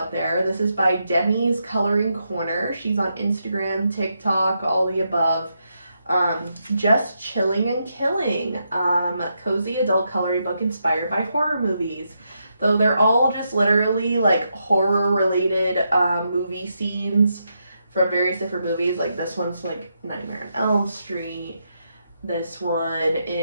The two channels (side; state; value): both; inverted; correlation -0.82